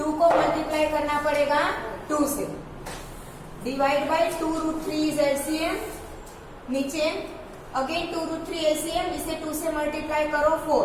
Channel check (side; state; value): both; identical; correlation 1.00